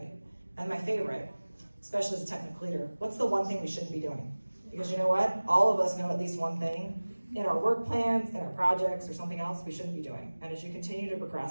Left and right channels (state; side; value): inverted; both; correlation -1.00